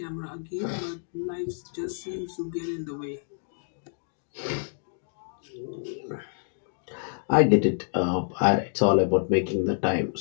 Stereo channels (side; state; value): right; silent; digital silence